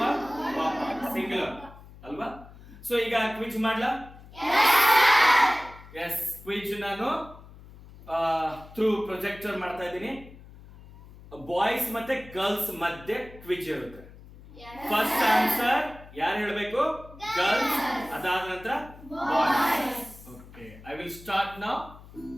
ಸಿಂಗುಲರ್ ಅಲ್ವಾ? ಸೊ ಈಗ ಕ್ವಿಜ್ ಮಾಡ್ಲಾ? ಎಸ್, ಕ್ವಿಜ್ ನಾನು ಥ್ರೂ ಪ್ರೊಜೆಕ್ಟರ್ ಮಾಡ್ತಾ ಇದ್ದೀನಿ. ಬಾಯ್ಸ್ ಮತ್ತೆ ಗರ್ಲ್ಸ್ ಮಧ್ಯೆ ಕ್ವಿಜ್ ಇರುತ್ತೆ. ಫಸ್ಟ್ ಆನ್ಸರ್ ಯಾರು ಹೇಳಬೇಕು? ಗರ್ಲ್ಸ್. ಅದಾದ ನಂತರ boys. Okay, I will start now.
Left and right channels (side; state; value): left; noise; hum, 19 dB below the sound